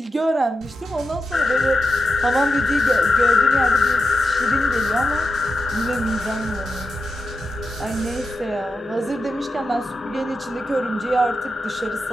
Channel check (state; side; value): normal; both; correlation 0.89